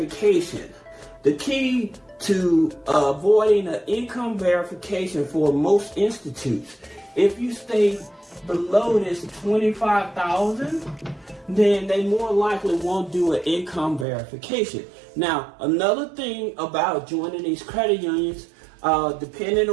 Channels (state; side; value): drops out; left; at 14.1 s